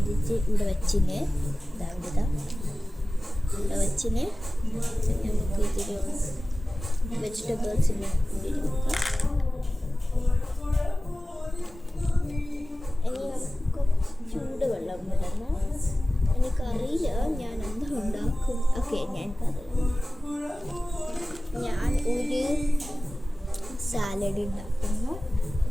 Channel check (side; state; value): both; normal; correlation 0.97